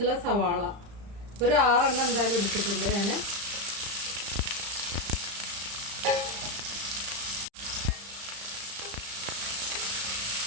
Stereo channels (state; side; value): late; left; 35 ms